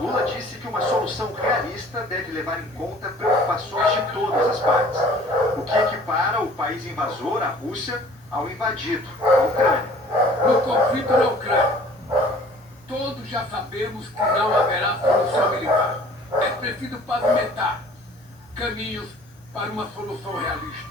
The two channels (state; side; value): normal; both; correlation 0.51